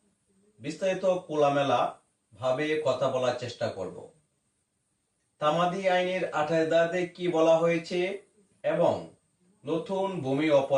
বিস্তারিত খোলামেলা ভাবে কথা বলার চেষ্টা করব। তামাদি আইনের 28 ধারাতে কি বলা হয়েছে এবং নতুন ভূমি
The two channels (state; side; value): identical; both; correlation 1.00